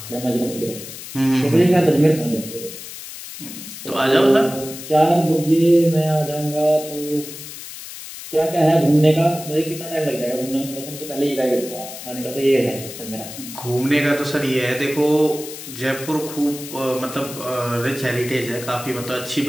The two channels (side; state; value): left; noise; hiss, 12 dB below the sound